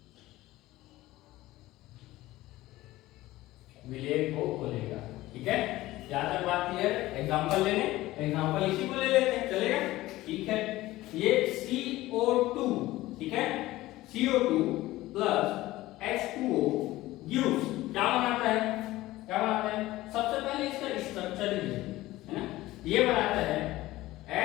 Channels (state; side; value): quieter; right; 17.2 dB